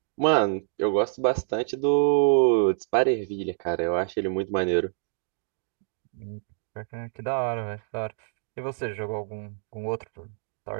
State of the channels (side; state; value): left; silent; digital silence